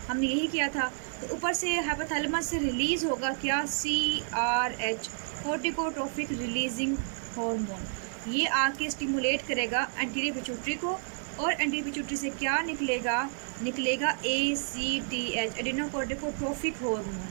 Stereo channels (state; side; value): silent; left; 58 dB below the other